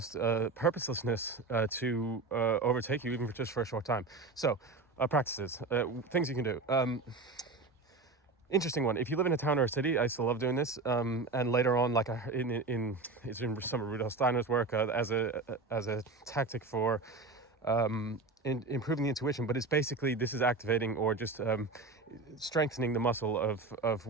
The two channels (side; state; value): left; quieter; 3.7 dB